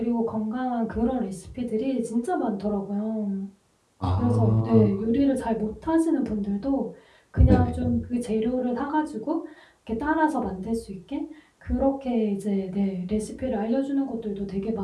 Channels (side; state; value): both; identical; correlation 1.00